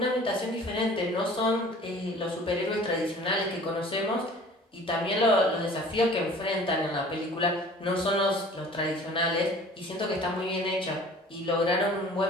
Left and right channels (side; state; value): both; normal; correlation 0.47